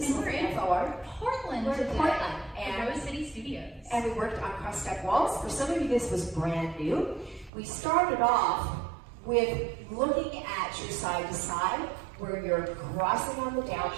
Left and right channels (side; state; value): left; drops out; at 7.5 s